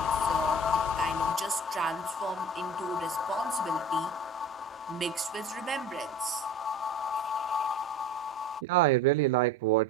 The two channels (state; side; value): normal; both; correlation 0.38